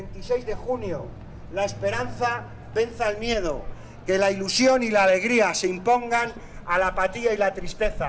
de junio la esperanza venza el miedo, que la ilusión y la alegría se impongan a la apatía y la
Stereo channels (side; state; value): both; identical; correlation 1.00